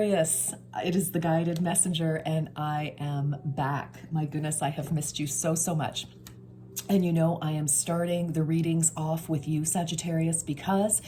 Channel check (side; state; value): both; identical; correlation 1.00